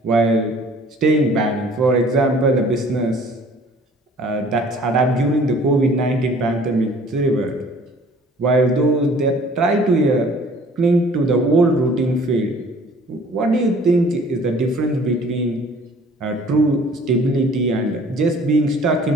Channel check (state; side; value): normal; both; correlation 0.53